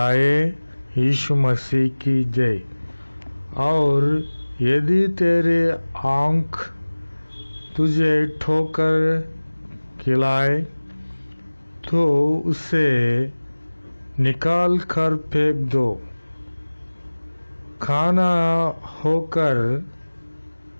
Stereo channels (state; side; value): inverted; both; correlation -1.00